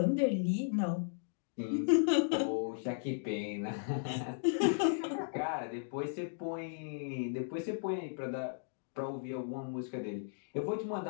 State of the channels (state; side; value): silent; right; digital silence